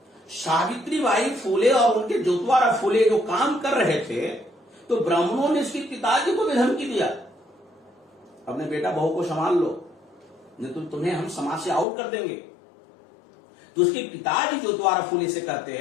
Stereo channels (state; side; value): drops out; right; at 11.9 s